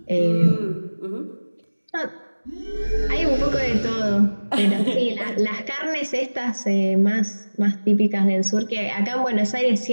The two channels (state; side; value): inverted; both; correlation -1.00